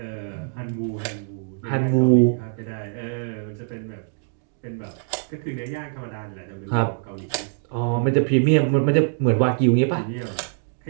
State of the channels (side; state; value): left; silent; digital silence